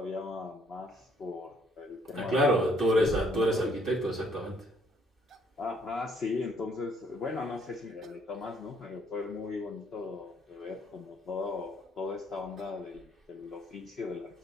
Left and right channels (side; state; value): both; normal; correlation 0.66